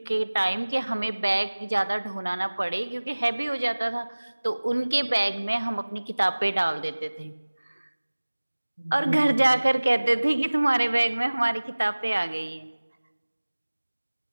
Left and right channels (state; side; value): inverted; both; correlation -1.00